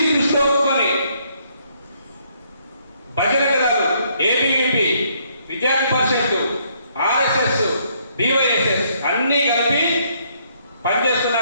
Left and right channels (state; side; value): inverted; both; correlation -0.69